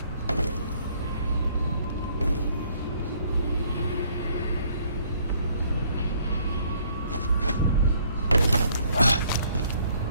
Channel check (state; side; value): inverted; both; correlation -0.63